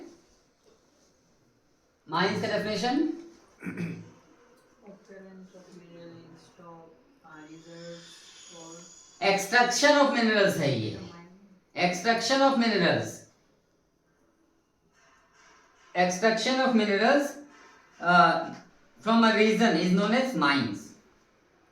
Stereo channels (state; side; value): identical; both; correlation 1.00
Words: माइंस का डेफिनेशन एक्सट्रैक्शन ऑफ मिनरल्स है. ये extraction of minerals from a region is known as mines.